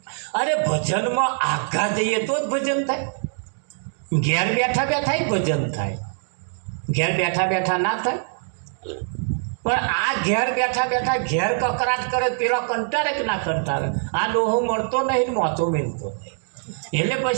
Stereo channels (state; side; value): silent; left; 63 dB below the other